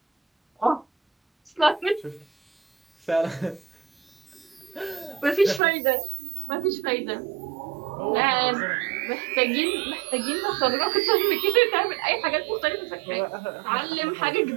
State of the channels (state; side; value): drops out; left; at 5.6 s